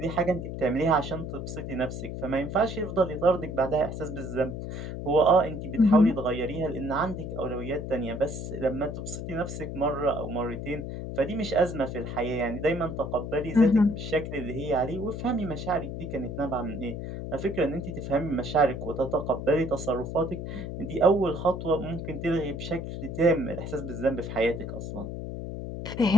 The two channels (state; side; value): noise; left; hum, 6 dB below the sound